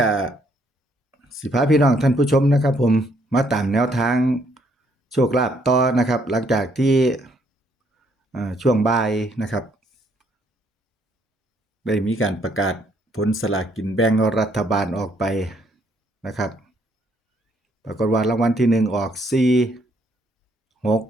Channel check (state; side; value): normal; both; correlation 0.69